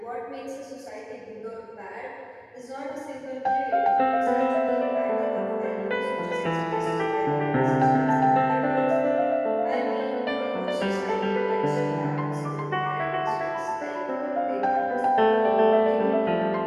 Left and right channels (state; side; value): identical; both; correlation 1.00